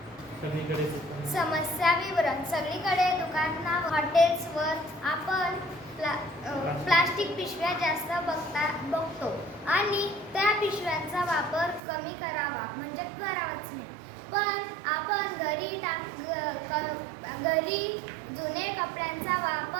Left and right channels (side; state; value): left; drops out; at 11.8 s